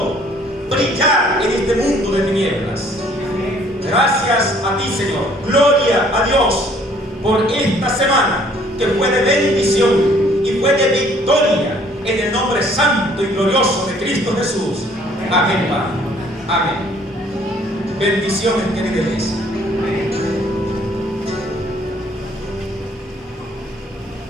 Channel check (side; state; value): both; normal; correlation 0.59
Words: brillar en este mundo de tinieblas. Gracias a ti, Señor. Gloria a Dios por esta semana que fue de bendición y fue de victoria en el nombre santo y glorioso de Cristo Jesús. Amén, Padre. Amén. Bendiciones, querida iglesia.